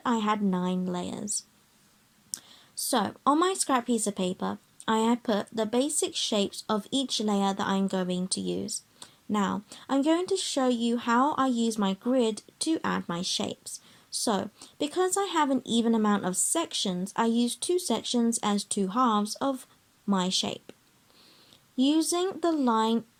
I had 9 layers. So, on my scrap piece of paper, I have put the basic shapes of each layer that I'm going to use. Now, I'm going to show you how I use my grid to add my shapes. So, because I have an even amount of sections, I use 2 sections as 2 halves of my shape, using the line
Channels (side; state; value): both; identical; correlation 1.00